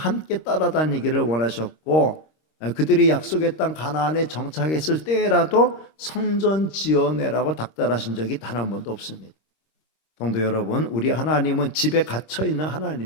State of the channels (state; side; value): late; right; 25 ms